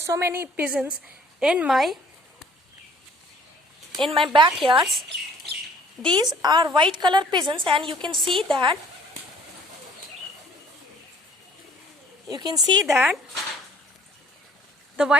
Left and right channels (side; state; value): both; normal; correlation 0.57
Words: many pigeons in my backyards. These are white color pigeons, and you can see that the